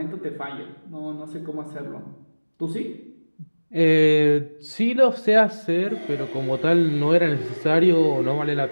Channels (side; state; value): both; inverted; correlation -1.00